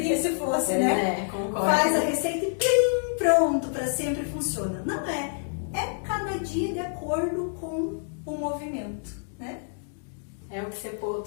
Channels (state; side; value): silent; right; digital silence